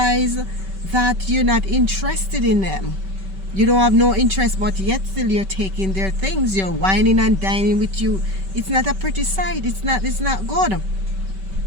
that you're not interested in them, you don't have no interest, but yet still you're taking their things. You're whining and dining with you. It's not a pretty sight. It's not good.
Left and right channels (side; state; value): left; late; 5.2 ms